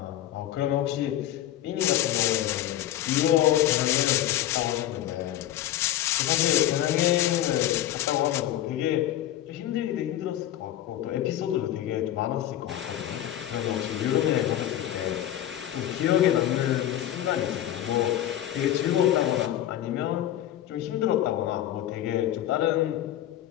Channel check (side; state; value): right; quieter; 12.6 dB